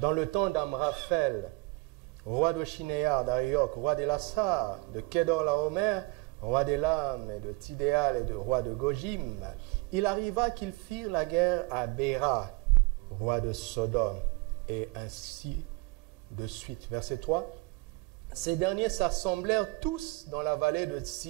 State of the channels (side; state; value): left; quieter; 25.9 dB